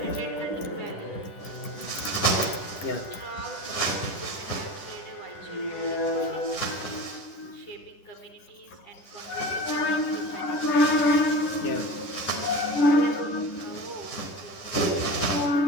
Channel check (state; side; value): late; right; 10 ms